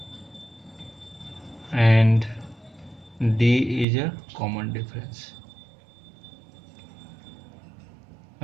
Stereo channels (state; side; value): drops out; left; at 3.9 s